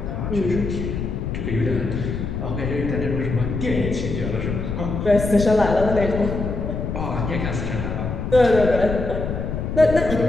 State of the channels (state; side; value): noise; left; rumble, 3 dB below the sound